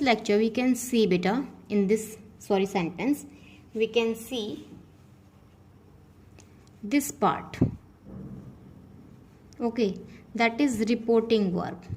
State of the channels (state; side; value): identical; both; correlation 1.00